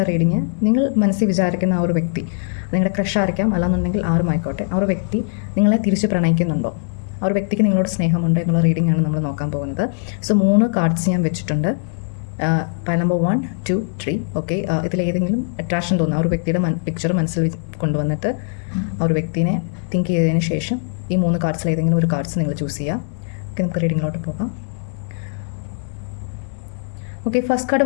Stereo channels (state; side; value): silent; right; 62 dB below the other